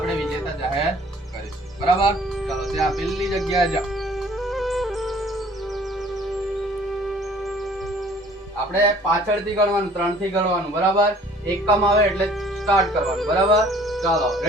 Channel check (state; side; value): normal; both; correlation 0.53